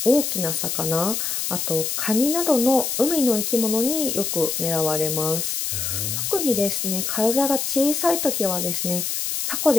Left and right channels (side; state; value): left; noise; hiss, 2 dB below the sound